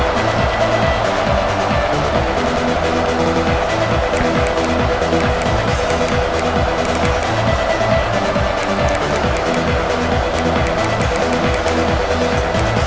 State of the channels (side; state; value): both; identical; correlation 1.00